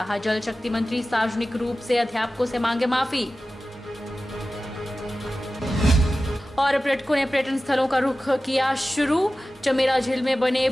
जल शक्ति मंत्री सार्वजनिक रूप से अध्यापकों से मांगे माफी। और पर्यटकों ने पर्यटन स्थलों का रुख किया शुरू। चमेरा झील में बने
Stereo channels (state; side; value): normal; both; correlation 0.95